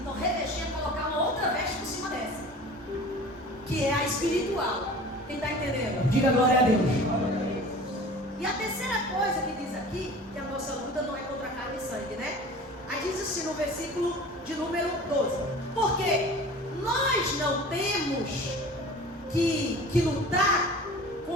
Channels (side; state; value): both; normal; correlation 0.41